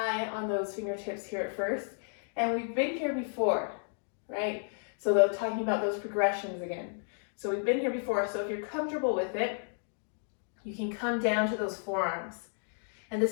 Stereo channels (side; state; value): right; silent; digital silence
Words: on those fingertips here at first. And we've been here before, right? So they're talking about those progressions again. So we've been here before, so if you're comfortable with it, you can come down to those forearms. And